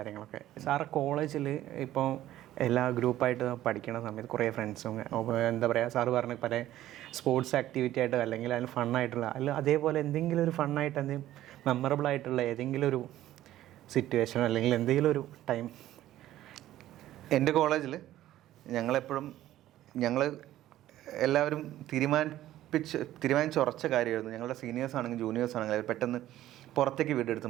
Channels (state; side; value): quieter; left; 13.8 dB